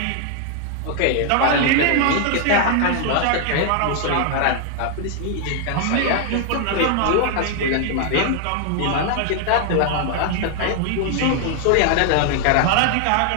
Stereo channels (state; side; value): different; both; correlation 0.00